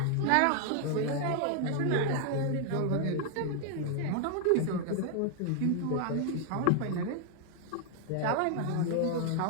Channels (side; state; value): both; different; correlation 0.00